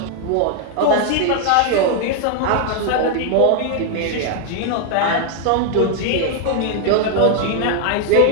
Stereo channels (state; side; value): different; both; correlation 0.00